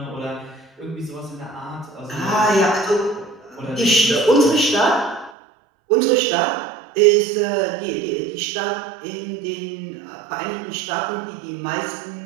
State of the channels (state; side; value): drops out; left; at 5.3 s